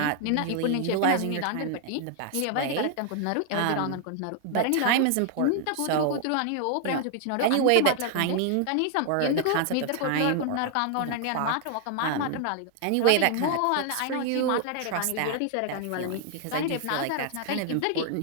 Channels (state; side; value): different; both; correlation 0.00